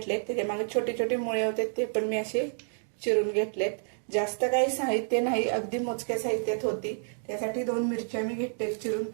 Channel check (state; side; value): silent; left; digital silence